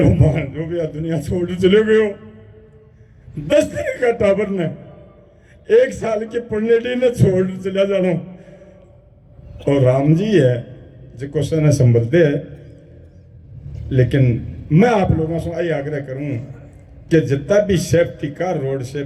मान जो भी दुनिया छोड़ चले गयो। 10 दिन का टाबर ने 1 साल के पढ़ने ने छोड़ चला जानो। और राम जी है जो क्वेश्चन संभलते है, लेकिन मैं आप लोगों से यही आग्रह करूं कि जितना भी सेफ्टी का, रोड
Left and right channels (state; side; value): identical; both; correlation 1.00